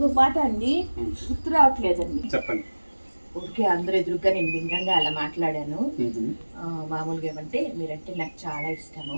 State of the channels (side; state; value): both; inverted; correlation -1.00